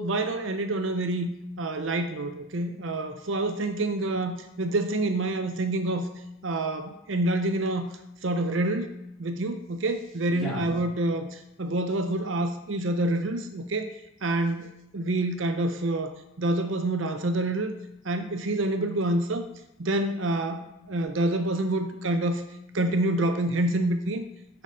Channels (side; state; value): both; normal; correlation 0.37